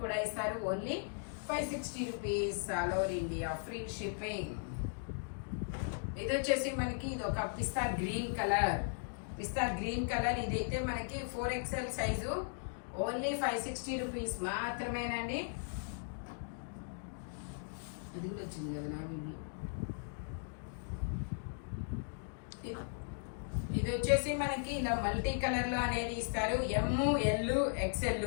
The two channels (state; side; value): silent; right; digital silence